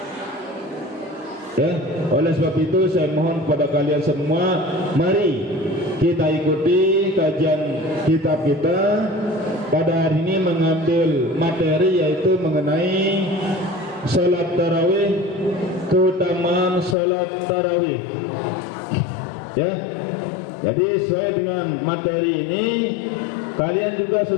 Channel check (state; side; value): drops out; right; at 16.9 s